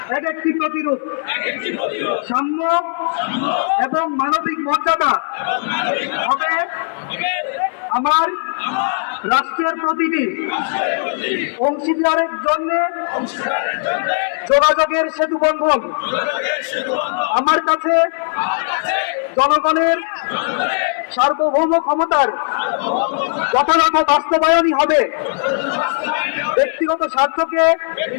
এক একটি প্রতিরোধ, সাম্য এবং মানবিক মর্যাদা হবে আমার রাষ্ট্রের প্রতিটি অংশীদারের জন্য যোগাযোগের সেতু বন্ধন। আমার কাছে জনগণের সার্বভৌম ক্ষমতার যথাযথ বাস্তবায়নই হবে ব্যক্তিগত স্বার্থকে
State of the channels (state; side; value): silent; right; 60 dB below the other